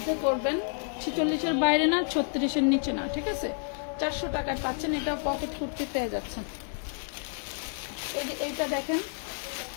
করবেন, 46-এর বাইরে না, 36-এর নিচে না, ঠিক আছে? 400 টাকায় পাচ্ছেন। এটাও পকেট কুর্তি পেয়ে যাচ্ছেন। এই যে এইটা দেখেন,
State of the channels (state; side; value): silent; right; 58 dB below the other